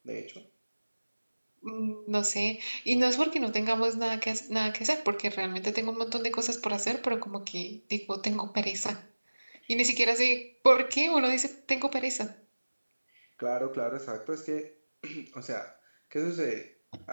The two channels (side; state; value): both; inverted; correlation -1.00